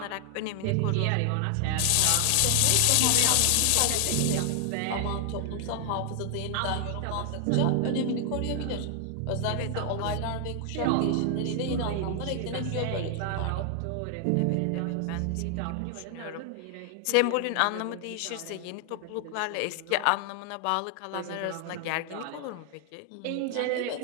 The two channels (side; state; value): both; different; correlation 0.00